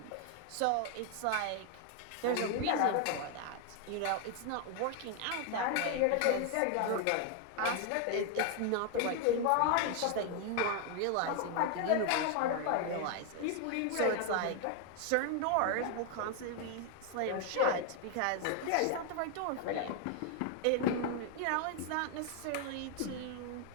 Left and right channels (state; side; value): different; both; correlation 0.00